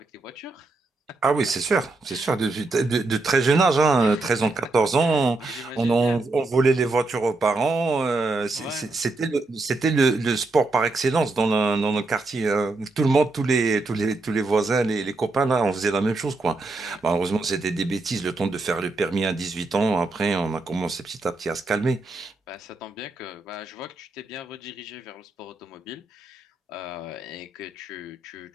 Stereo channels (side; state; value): left; quieter; 3.3 dB